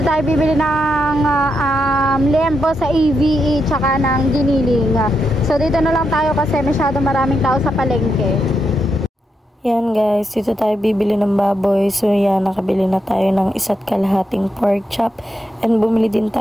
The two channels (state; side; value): normal; both; correlation 0.83